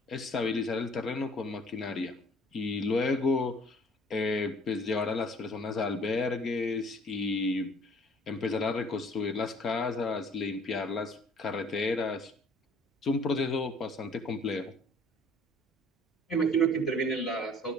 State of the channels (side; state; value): both; normal; correlation 0.55